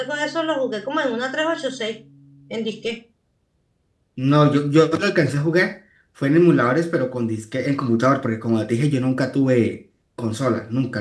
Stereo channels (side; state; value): both; identical; correlation 1.00